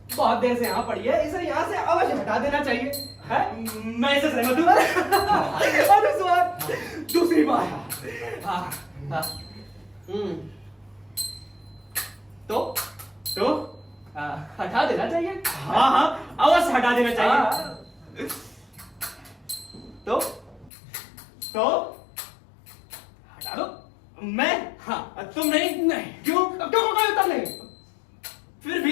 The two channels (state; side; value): drops out; right; at 20.7 s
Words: बहुत देर से यहाँ पड़ी है, इसे यहाँ से अवश्य हटा देना चाहिए। है? मैं इसे सहमत हूँ। अनुस्वार दूसरी बार। हाँ, हाँ। तो हटा देना चाहिए। हाँ हाँ, अवश्य हटा देना चाहिए। तो हटा दो। मैं? हाँ। तुम नहीं? नहीं। क्यों? अब क्यों कोई उत्तर नहीं? फिर